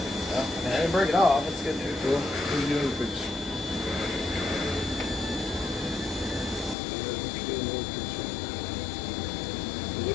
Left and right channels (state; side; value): drops out; right; at 6.8 s